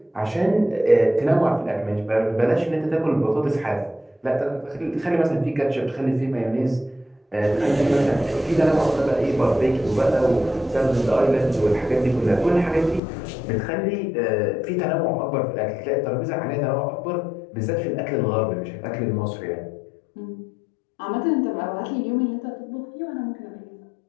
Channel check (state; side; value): drops out; right; at 13.0 s